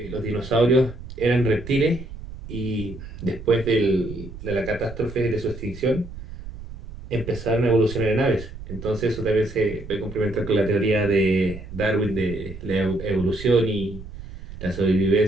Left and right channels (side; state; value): right; noise; rumble, 13 dB below the sound